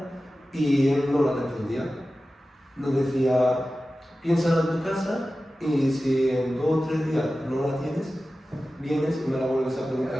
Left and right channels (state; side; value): normal; both; correlation 0.95